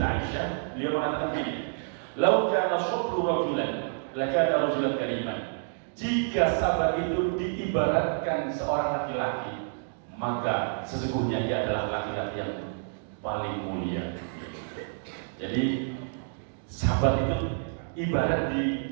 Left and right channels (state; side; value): silent; left; digital silence